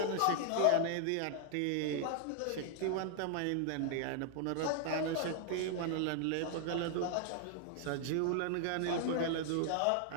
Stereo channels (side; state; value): both; different; correlation 0.00